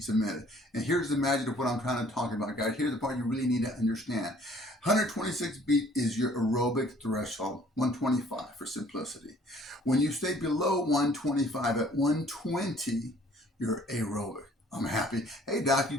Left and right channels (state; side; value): normal; both; correlation 0.57